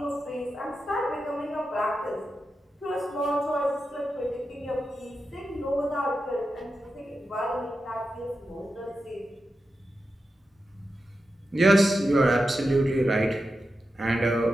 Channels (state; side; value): normal; both; correlation 0.90